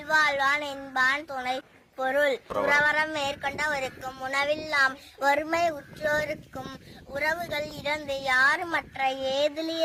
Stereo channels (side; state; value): both; identical; correlation 1.00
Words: என்பான் துணை. பொருள்: துறவறம் மேற்கொண்டவருக்கும் உணவில்லாம் வறுமை உற்றோருக்கும் உறவுகள் இறந்து யாருமற்ற